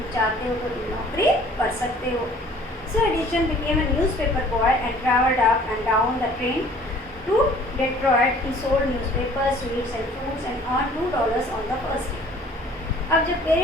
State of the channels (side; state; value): both; normal; correlation 0.53